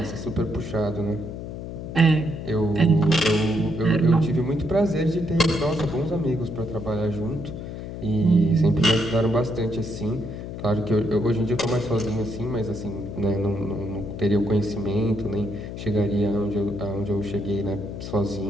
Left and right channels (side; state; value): left; noise; hum, 8 dB below the sound